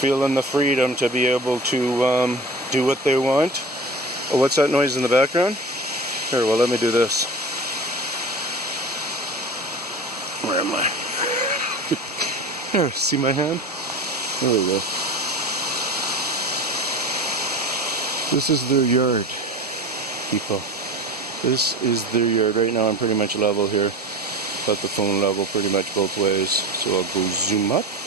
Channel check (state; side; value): normal; both; correlation 0.33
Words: the freedom to be able to do what they want. Oh, what's that noise in the background? Here, well, let me do this. Where am I? Here, see my hand? There we go. This is their yard, people. This is their yard. Right now I'm pretty much level here. Got the phone level pretty much both ways. So I'll go zoom up